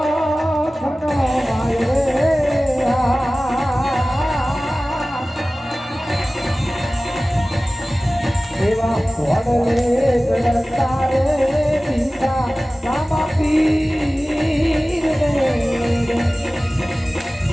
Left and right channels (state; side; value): normal; both; correlation 0.97